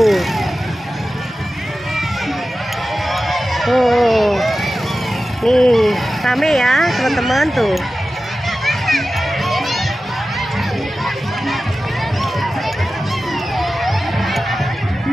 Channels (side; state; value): both; normal; correlation 0.94